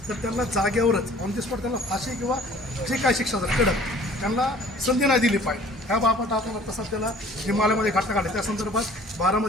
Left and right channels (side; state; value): both; normal; correlation 0.51